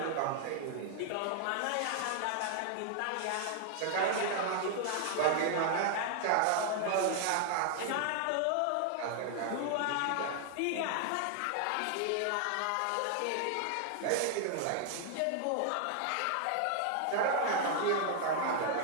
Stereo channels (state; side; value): different; both; correlation 0.00